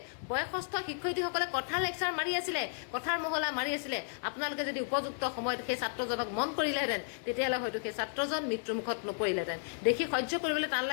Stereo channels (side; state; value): right; silent; 55 dB below the other